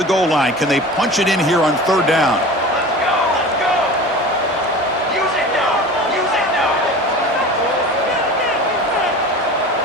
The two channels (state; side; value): normal; both; correlation 0.36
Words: goal line. Can they punch it in here on 3rd down? Let's go. Use it now. Use it now.